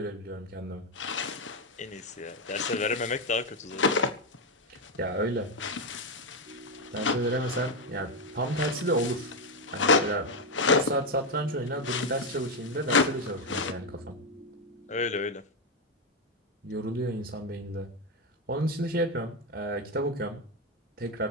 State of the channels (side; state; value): both; normal; correlation 0.06